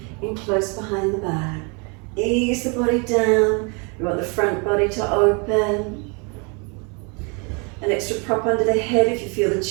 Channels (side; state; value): left; quieter; 33.5 dB